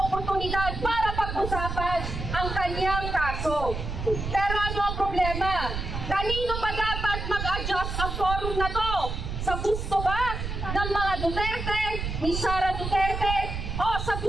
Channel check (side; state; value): right; noise; rumble, 5 dB below the sound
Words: oportunidad para pag-usapan ang kanyang kaso. Pero ano ang problema? Kanino ba dapat mag-adjust ang forum na to? Sa gusto ba ng mga Duterte, ni Sara Duterte, o sa